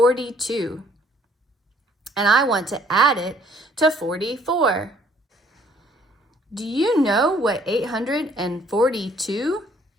and I want to add it to 44. Do you know what 842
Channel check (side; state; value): both; normal; correlation 0.62